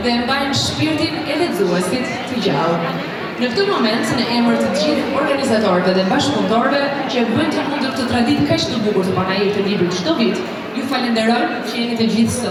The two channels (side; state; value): both; identical; correlation 1.00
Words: dhe mbajnë shpirtin e lexuesit të gjallë. Në këtë moment, në emër të gjithë organizatorëve dhe bashkëpunëtorëve që bëjnë të mundur këtë traditë kaq të bukur të panajër të librit çdo vit, ju falenderoj që jeni të gjithë